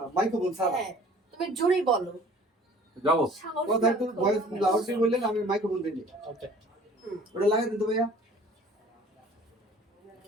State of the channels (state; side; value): normal; both; correlation 0.50